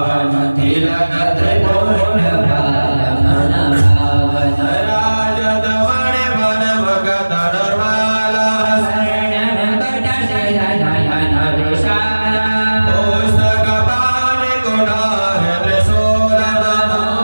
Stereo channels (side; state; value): both; inverted; correlation -1.00